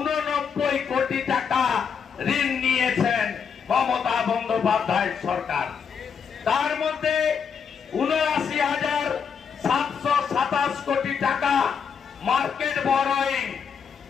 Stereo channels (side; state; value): right; quieter; 6.7 dB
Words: কোটি টাকা ঋণ নিয়েছেন মমতা বন্দ্যোপাধ্যায় সরকার। তার মধ্যে 79,727 কোটি টাকা মার্কেট বরোয়িং,